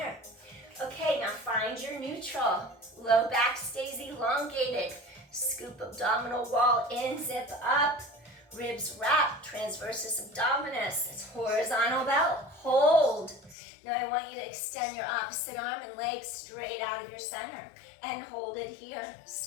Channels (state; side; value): drops out; right; at 13.6 s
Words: Okay, now find your neutral. Low back stays elongated. Scoop abdominal wall in, zip up. Ribs wrap, transversus abdominis. It's horizontal belt. Hold. Now I want you to extend your opposite arm and leg straight out of your center. And hold it here.